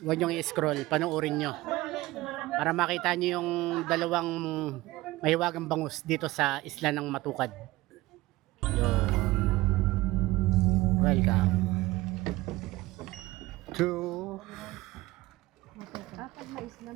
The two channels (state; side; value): quieter; left; 19.0 dB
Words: niyong i-scroll, panoorin nyo. Para makita nyo yung dalawang mahiwagang bangus dito sa isla ng Matukad. Yun. Welcome to